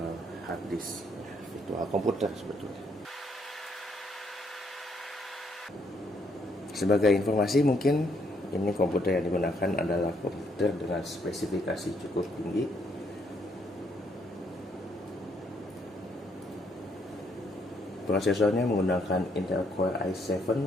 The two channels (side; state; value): both; normal; correlation 0.71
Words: hard disk, virtual komputer sebetulnya. Sebagai informasi mungkin ini komputer yang digunakan adalah komputer dengan spesifikasi cukup tinggi. Prosesornya menggunakan Intel Core i7